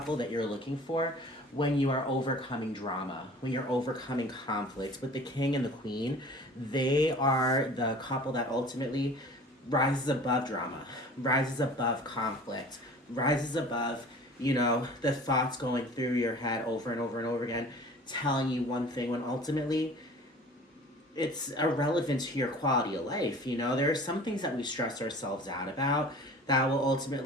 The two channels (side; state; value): both; normal; correlation 0.44